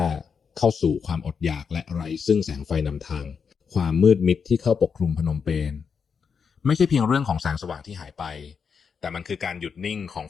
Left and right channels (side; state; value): right; quieter; 6.2 dB